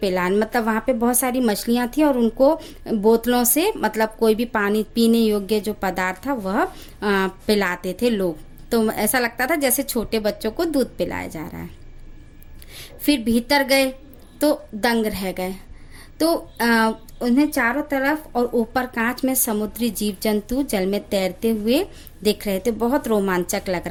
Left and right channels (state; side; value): identical; both; correlation 1.00